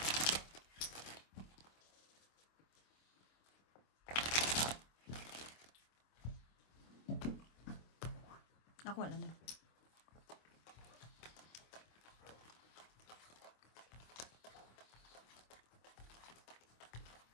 Okay. Ako wala na.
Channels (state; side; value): late; right; 26 ms